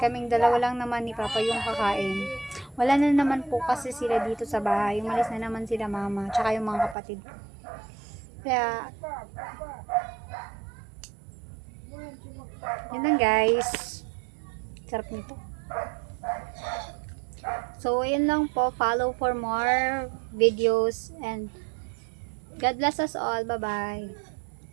dalawa lang naman ni Papa yung kakain. Wala na naman po kasi sila dito sa bahay. Umalis na naman sila mama, tsaka yung mga kapatid. Kaya, yun lang, guys. Sarap nito. So, ayun lang po. Follow for more videos and God bless us all. Bye-bye.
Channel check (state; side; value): drops out; left; at 7.0 s